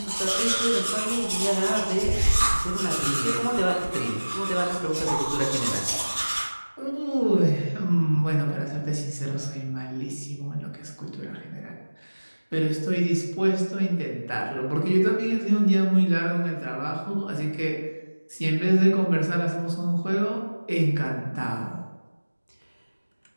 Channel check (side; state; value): both; inverted; correlation -1.00